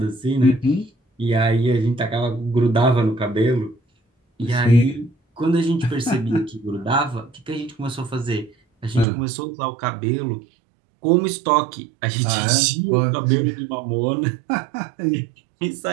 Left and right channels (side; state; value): left; drops out; at 9.1 s